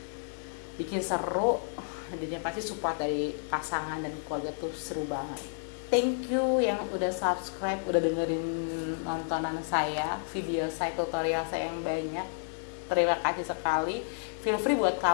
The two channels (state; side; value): silent; right; digital silence